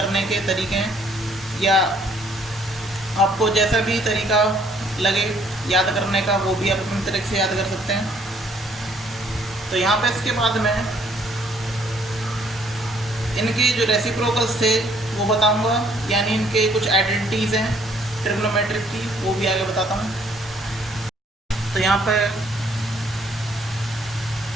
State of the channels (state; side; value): normal; both; correlation 0.63